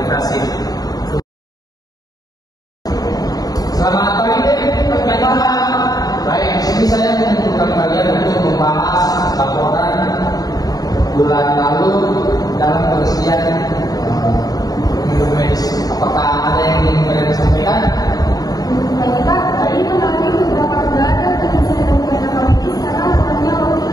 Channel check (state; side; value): late; right; 0.18 ms